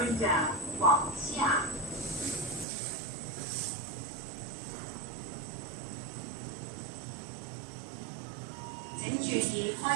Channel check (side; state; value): left; drops out; at 2.7 s